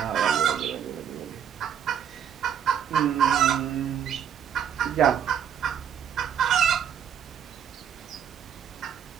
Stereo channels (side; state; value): left; quieter; 8.6 dB